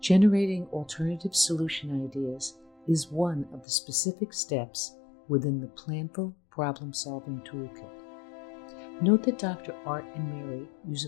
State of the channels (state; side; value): drops out; right; at 3.7 s